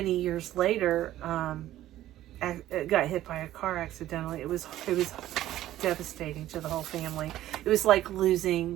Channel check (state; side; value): quieter; left; 13.8 dB